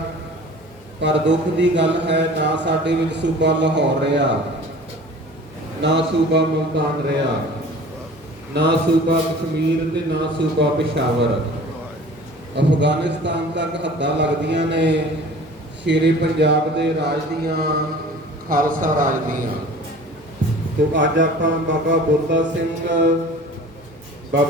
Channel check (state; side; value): normal; both; correlation 0.44